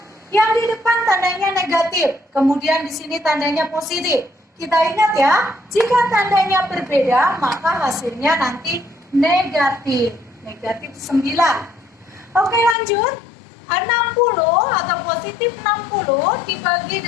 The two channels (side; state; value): right; drops out; at 12.8 s